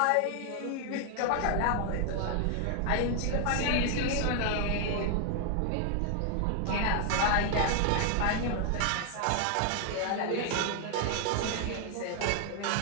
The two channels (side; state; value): both; different; correlation 0.00